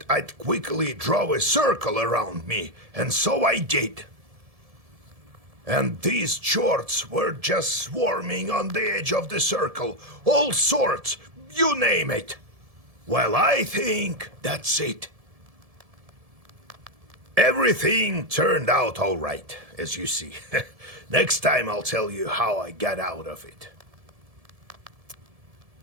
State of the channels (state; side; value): late; left; 1.7 ms